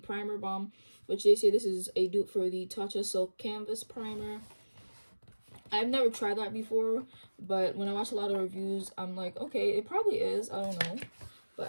Primer Balm, which they say this is a dupe for the Tatcha Silk Canvas Primer. I've never tried that before, but when I watch a lot of reviews, I'm like, okay, it probably is. I don't know.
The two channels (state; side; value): inverted; both; correlation -1.00